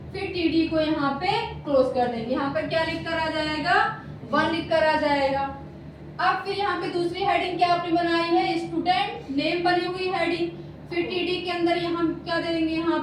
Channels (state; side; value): identical; both; correlation 1.00